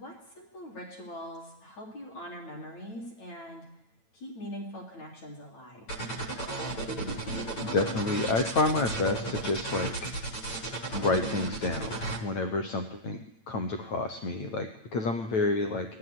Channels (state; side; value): late; right; 9.0 ms